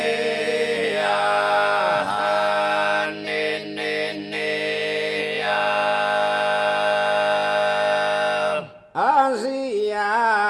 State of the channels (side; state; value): both; identical; correlation 1.00